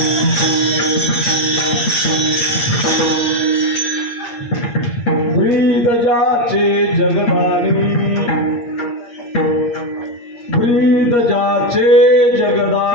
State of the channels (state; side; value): late; right; 8.5 ms